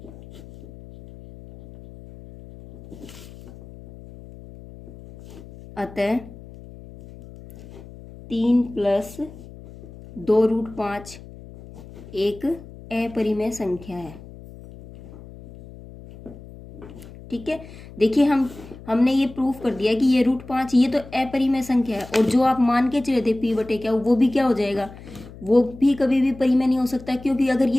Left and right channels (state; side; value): noise; left; hum, 17 dB below the sound